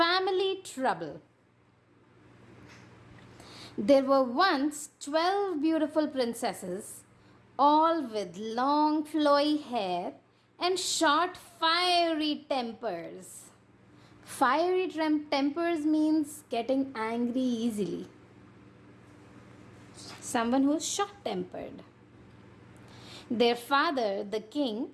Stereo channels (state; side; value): identical; both; correlation 1.00